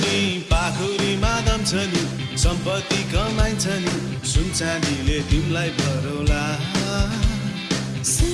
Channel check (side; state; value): both; identical; correlation 1.00